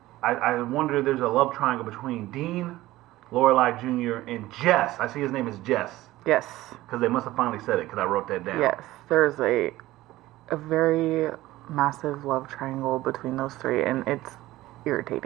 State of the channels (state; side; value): quieter; left; 16.9 dB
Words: I wonder if there's a love triangle between Dean, Lorelai Jr., and Jess. I see his name is Jess. Yes. Because they must have finally said it because I wrote that down. Yes. There's a very massive love triangle between those three, and it's